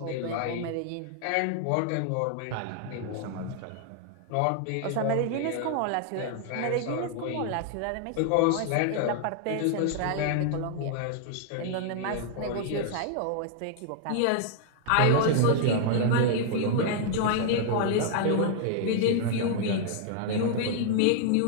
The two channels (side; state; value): both; different; correlation 0.00